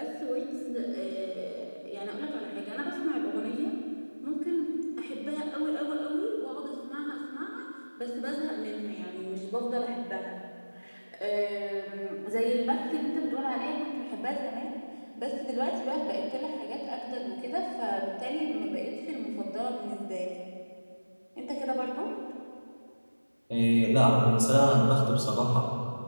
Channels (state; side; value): inverted; both; correlation -1.00